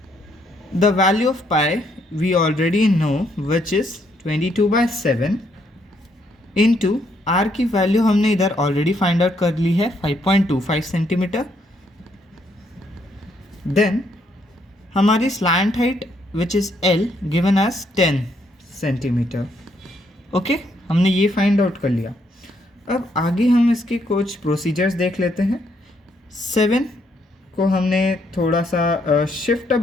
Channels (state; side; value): normal; both; correlation 0.73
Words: The value of pi we already know, which is 22/7 into r की वैल्यू हमने इधर ऑलरेडी फाइंड आउट कर ली है 5.25 सेंटीमीटर। देन हमारी slant height which is L given as 10 centimetre. Okay, हमने ये फाइंड आउट कर लिया। अब आगे हम इसके कुछ प्रोसीजर्स देख लेते हैं। 7 को हमने थोड़ा सा शिफ्ट